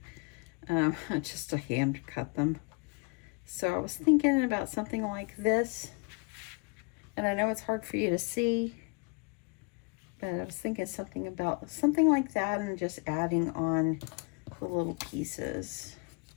hand cut them. So I was thinking about something like this, and I know it's hard for you to see, but I was thinking something like that and just adding on the little pieces.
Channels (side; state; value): right; quieter; 31.5 dB